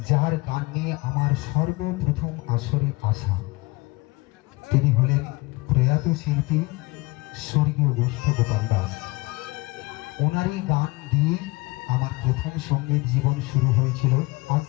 যার গান নিয়ে আমার সর্বপ্রথম আসরে আসা, তিনি হলেন প্রয়াত শিল্পী স্বর্গীয় গোষ্ঠ গোপাল দাস। ওনারই গান দিয়ে আমার প্রথম সঙ্গীত জীবন শুরু হয়েছিল, আজ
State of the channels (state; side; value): quieter; right; 23.2 dB